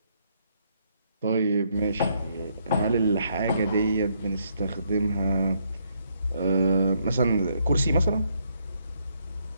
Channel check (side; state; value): both; inverted; correlation -0.73